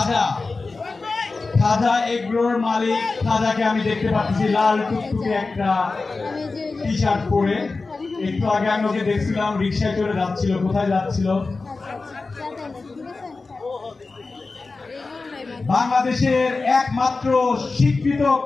খাজা এগ্রোর মালিক খাজাকে আমি দেখতে পাচ্ছি লাল টুকটুকে একটা টি শার্ট পরে। একটু আগে আমি ওকে দেখছিলাম রিক্সায় চড়ে যাচ্ছিল। কোথায় যাচ্ছিল? বাংলাদেশের একমাত্র স্বীকৃত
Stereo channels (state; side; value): quieter; right; 3.8 dB